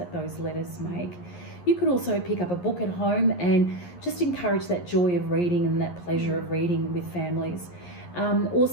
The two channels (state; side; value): late; right; 11 ms